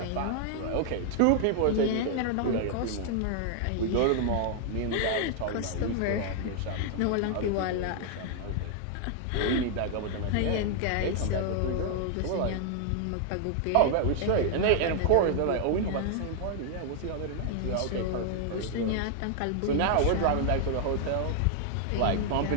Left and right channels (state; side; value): different; both; correlation 0.00